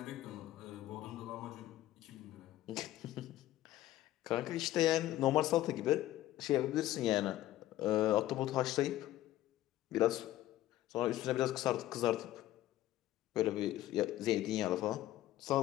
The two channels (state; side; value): quieter; right; 14.5 dB